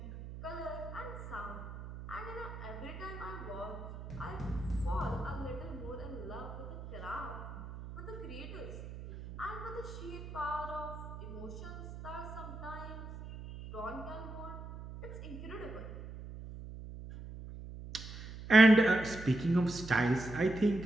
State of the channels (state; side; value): noise; right; hum, 11 dB below the sound